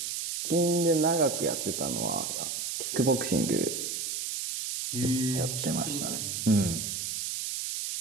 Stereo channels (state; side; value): noise; right; hiss, 3 dB below the sound